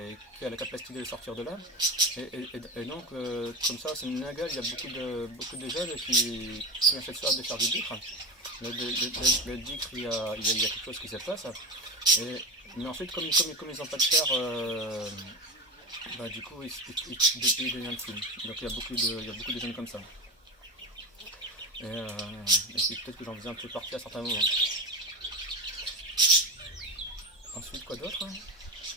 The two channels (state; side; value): normal; both; correlation 0.22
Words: a la capacité de les sortir de là. Et donc, comme ça, c'est une nagale, il y a beaucoup de jeunes qui ont cette soif de faire du dhikr. Le dhikr, il y a quelque chose qui se passe. Mais ensuite, comme ils n'ont pas de chair, du coup, ils deviennent fous. Donc, il y a beaucoup de jeunes comme ça. Et peut-être que j'en faisais un peu partie à certains moments. Ensuite, quoi d'autre?